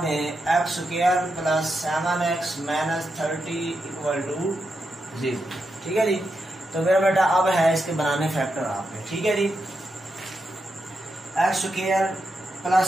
दें, x square plus 7x minus 30 equal to 0। ठीक है जी, तो मेरा बेटा अब है इसके बनाने फैक्टर आपने। ठीक है जी, x square plus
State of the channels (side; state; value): both; normal; correlation 0.85